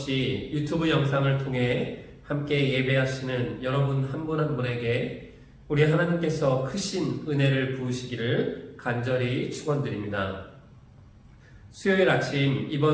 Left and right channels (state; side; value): identical; both; correlation 1.00